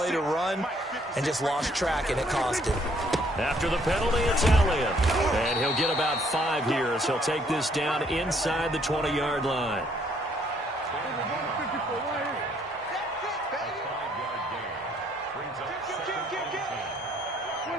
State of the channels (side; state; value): both; normal; correlation 0.66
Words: to run and just lost track, and it cost him. After the penalty, it's Elliott. And he'll get about 5 here as he'll take this down inside the 20-yard line.